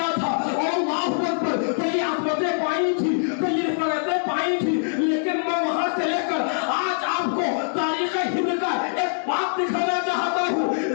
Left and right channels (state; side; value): silent; right; digital silence